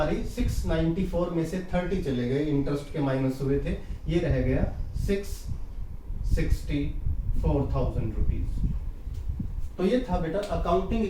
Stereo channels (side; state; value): both; identical; correlation 1.00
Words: 694 में से 30 चले गए, इंटरेस्ट के माइनस हुए थे, ये रह गया 664,000 रुपीज। तो ये था बेटा अकाउंटिंग